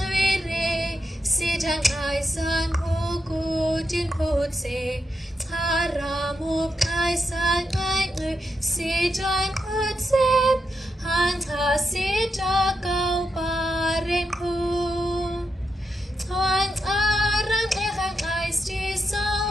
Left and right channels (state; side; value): normal; both; correlation 0.85